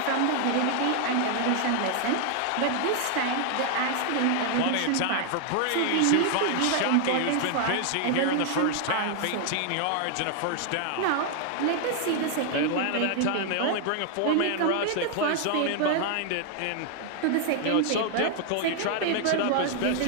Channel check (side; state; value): both; different; correlation 0.00